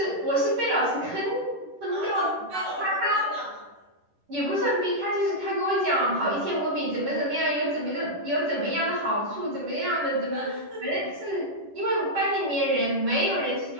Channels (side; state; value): left; late; 10 ms